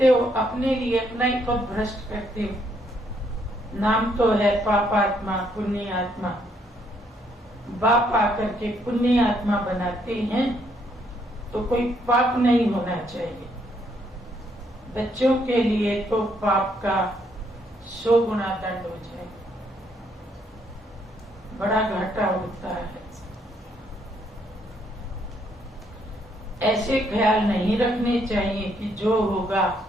हो अपने लिए अपना ही पद भ्रष्ट करते हो। नाम तो है पापात्मा पुण्य आत्मा। बाप आकर के पुण्य आत्मा बनाते हैं तो कोई पाप नहीं होना चाहिए। बच्चों के लिए तो पाप का 100 गुना दंड हो जाए, बड़ा घाटा होता है। ऐसे ख्याल नहीं रखने चाहिए कि जो होगा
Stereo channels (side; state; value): both; normal; correlation 0.71